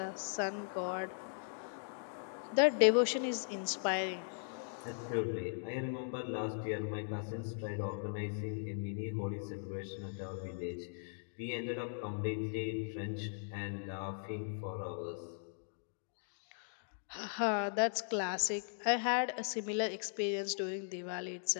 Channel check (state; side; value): silent; right; digital silence